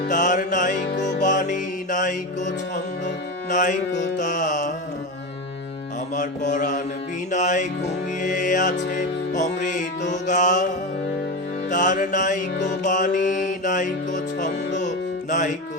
তার নাইকো বাণী নাইকো ছন্দ নাইকো তান। আমার পরাণ বিনায় ঘুমিয়ে আছে অমৃত গান, তার নাইকো বাণী নাইকো ছন্দ নাইকো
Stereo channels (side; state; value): both; normal; correlation 0.20